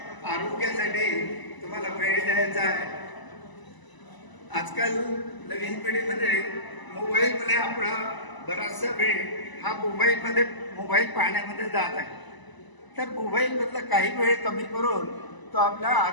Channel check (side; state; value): right; late; 1.0 ms